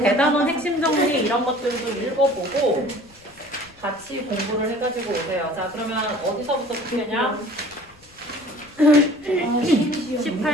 핵심 정리 이런 것들도 읽어보고 같이 공부를 해가지고 오세요. 자, 그러면 어디서부터 풀겠냐?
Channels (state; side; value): noise; left; rumble, 27 dB below the sound